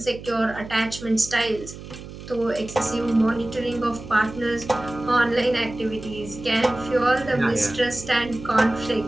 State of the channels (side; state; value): right; noise; hum, 13 dB below the sound